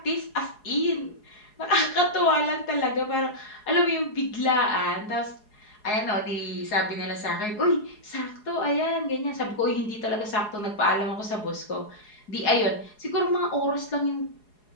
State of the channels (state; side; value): late; right; 4.8 ms